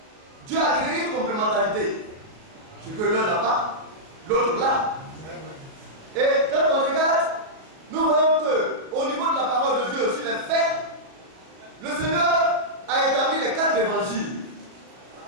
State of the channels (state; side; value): late; left; 37 ms